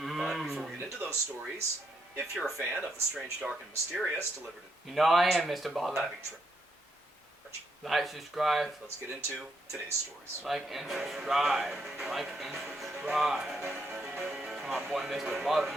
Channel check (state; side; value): normal; both; correlation 0.78